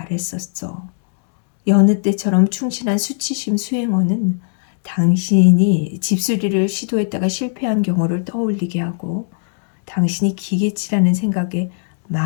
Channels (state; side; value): silent; right; digital silence